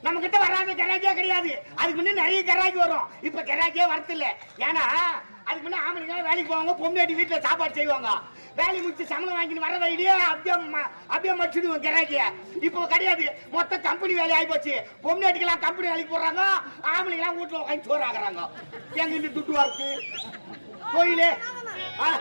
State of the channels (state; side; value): inverted; both; correlation -1.00